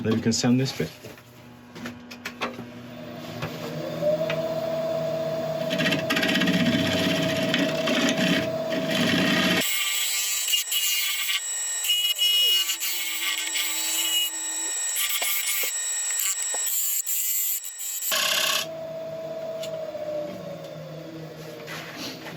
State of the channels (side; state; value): both; identical; correlation 1.00